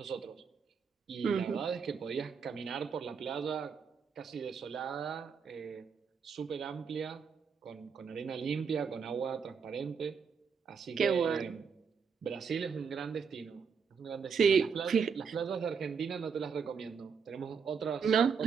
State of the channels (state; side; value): quieter; left; 6.2 dB